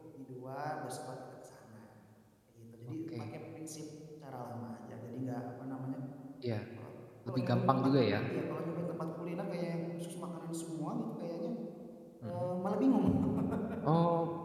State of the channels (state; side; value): identical; both; correlation 1.00